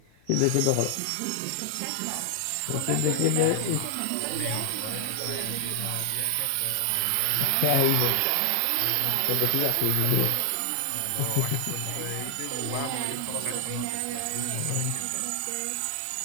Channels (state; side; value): different; both; correlation 0.00